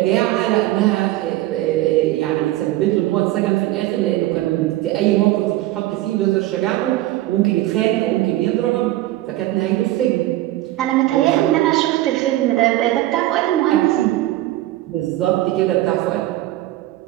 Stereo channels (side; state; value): left; quieter; 16.1 dB